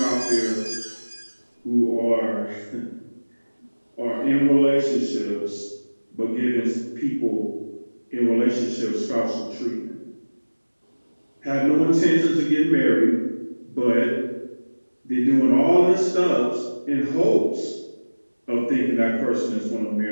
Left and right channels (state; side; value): inverted; both; correlation -1.00